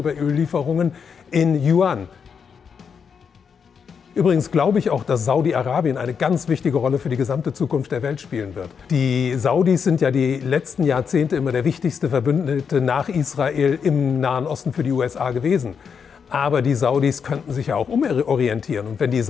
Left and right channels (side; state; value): right; quieter; 6.6 dB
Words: Öllieferungen in Yuan. Übrigens glaube ich auch, dass Saudi-Arabien eine ganz wichtige Rolle für die gesamte Zukunft der Welt spielen wird. Die Saudis sind ja die letzten Jahrzehnte immer der wichtigste Verbündete nach Israel im Nahen Osten für die USA gewesen. Aber die Saudis könnten sich ja auch umorientieren. Und wenn die